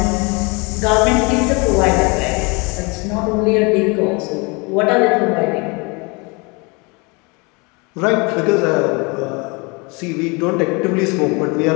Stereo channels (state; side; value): quieter; right; 28.9 dB